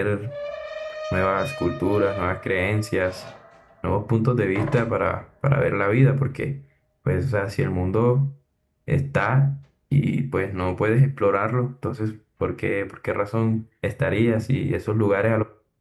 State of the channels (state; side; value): identical; both; correlation 1.00